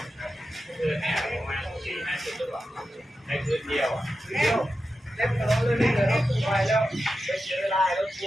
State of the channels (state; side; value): normal; both; correlation 0.91